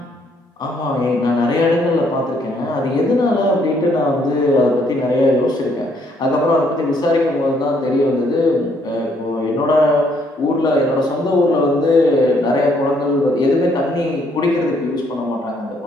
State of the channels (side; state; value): both; normal; correlation 0.68